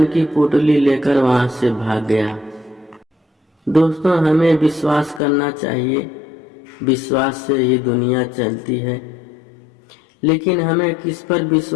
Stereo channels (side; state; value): right; drops out; at 5.2 s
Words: की पोटली लेकर वहां से भाग गया। दोस्तों, हमें विश्वास करना चाहिए। विश्वास से ही दुनिया चलती है। लेकिन हमें किस पर